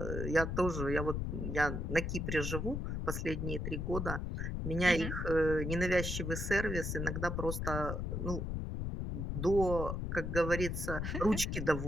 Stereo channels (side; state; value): left; noise; rumble, 2 dB below the sound